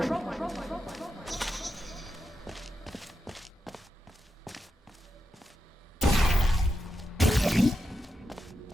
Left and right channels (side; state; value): both; normal; correlation 0.87